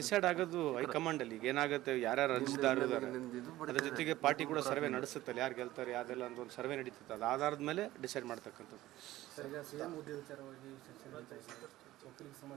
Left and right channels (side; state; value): left; quieter; 16.0 dB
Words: ಆಗೋದು ಹೈಕಮಾಂಡಲ್ಲಿ. ಈಗ ಏನಾಗುತ್ತೆ, ಯಾರ್ಯಾರು ಅರ್ಜಿದಾರರು ಇದ್ದಾರೆ ಅದ್ರ ಜೊತೆಗೆ ಪಾರ್ಟಿ ಕೂಡ ಸರ್ವೆ ನಡೆಸುತ್ತಲ್ಲ, ಯಾರು ಗೆಲ್ತಾರೆ ಯಾವ್ದೆಲ್ಲ ಅಂತ ಒಂದು ಸರ್ವೆ ನಡೀತದೆ, ಅದು ಆಧಾರದ ಮೇಲೆ ಡಿಸೈಡ್ ಮಾಡ್ತಕ್ಕಂಥದ್ದು.